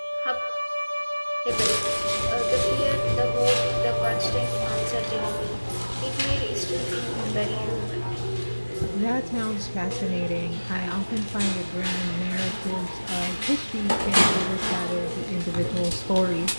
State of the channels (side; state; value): both; inverted; correlation -1.00